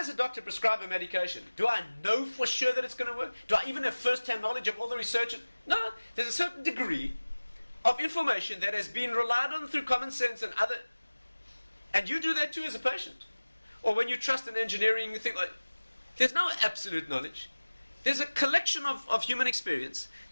a doctor prescribe a medication, do I know for sure that it's going to work? Do I even have first-hand knowledge of all the research? No, there's a certain degree of information that has been relied on through common sense and other... And you do that too as a patient. Or when you trust in engineering, you think, like, there's no absolute knowledge. There's a collection of human experience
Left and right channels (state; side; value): inverted; both; correlation -1.00